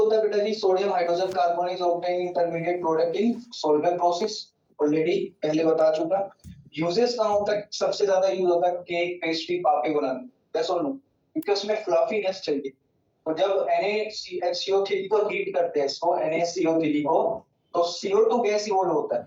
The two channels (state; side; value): identical; both; correlation 1.00